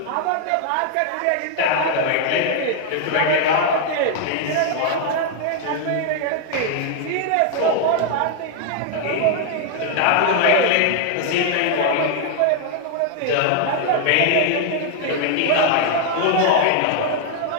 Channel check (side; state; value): both; different; correlation 0.00